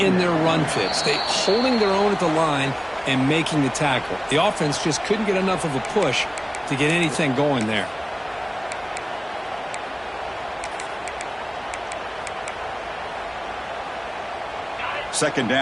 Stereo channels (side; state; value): both; identical; correlation 1.00